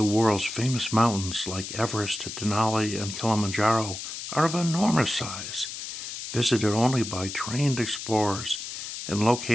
world's famous mountains like Everest, Denali, and Kilimanjaro are of enormous size, visited only by trained explorers and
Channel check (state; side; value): noise; left; hiss, 8 dB below the sound